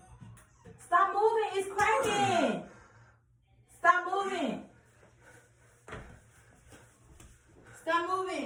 Stop moving. It's cracking. Stop moving. Stop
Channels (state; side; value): identical; both; correlation 1.00